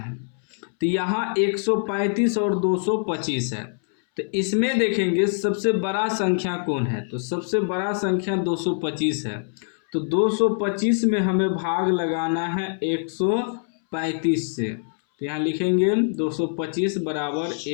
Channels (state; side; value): silent; right; 63 dB below the other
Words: तो यहाँ 135 और 225 है, तो इसमें देखेंगे सबसे बड़ा संख्या कौन है। तो सबसे बड़ा संख्या 225 है। तो 225 में हमें भाग लगाना है 135 से। तो यहाँ लिखेंगे 225 बराबर